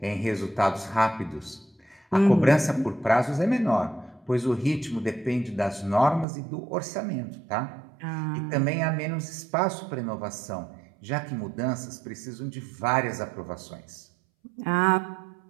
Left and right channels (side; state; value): left; drops out; at 6.2 s